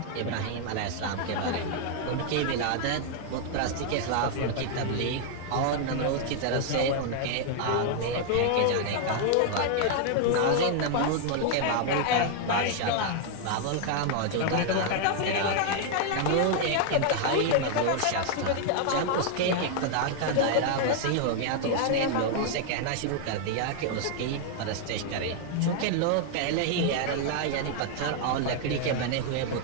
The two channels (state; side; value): different; both; correlation 0.00